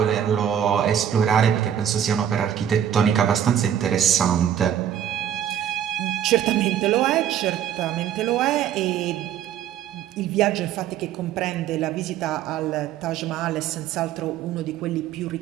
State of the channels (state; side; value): quieter; left; 9.7 dB